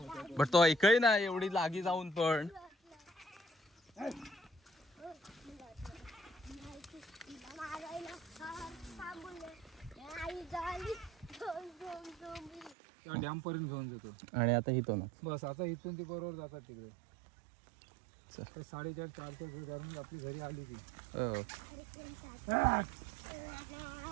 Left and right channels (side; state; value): left; drops out; at 12.8 s